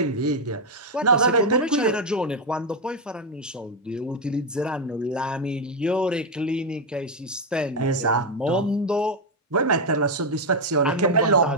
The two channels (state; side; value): normal; both; correlation 0.03